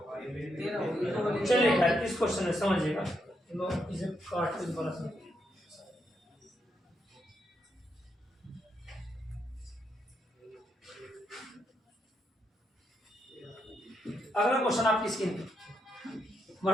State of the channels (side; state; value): both; normal; correlation 0.80